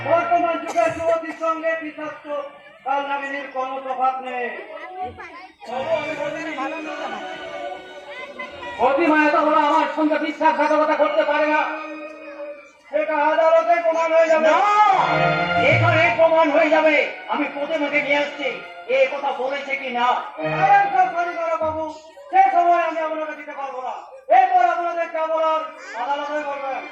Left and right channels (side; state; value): both; identical; correlation 1.00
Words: বর্তমান যুগের যুবতীর সঙ্গে বিশ্বস্ত কাল নামিনীর কোনো তফাৎ নেই। অতিমায়া তো ওরা আমার সঙ্গে বিশ্বাসঘাতকতা করতে পারে না। সেটা আদালতে প্রমাণ হয়ে যাবে। না, এখানে প্রমাণ হয়ে যাবে। আমি প্রতিমাকে নিয়ে আসছি, এ কথা বলেছে কি না। বাবু, সে সময় আমি আপনাকে দিতে পারবো না। এরপর আপনাদের যা বলার আদালতে বলবেন।